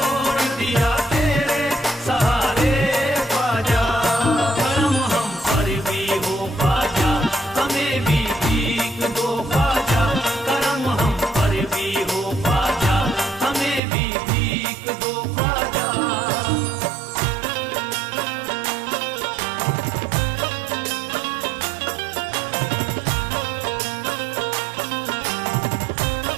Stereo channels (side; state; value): left; drops out; at 13.8 s